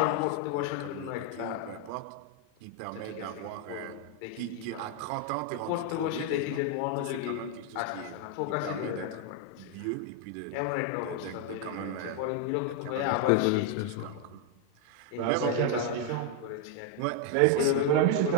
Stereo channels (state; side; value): different; both; correlation 0.01